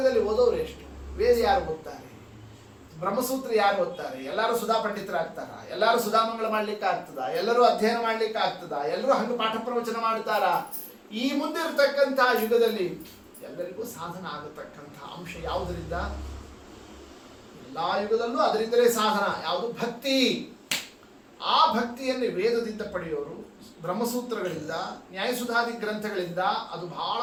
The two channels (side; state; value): both; identical; correlation 1.00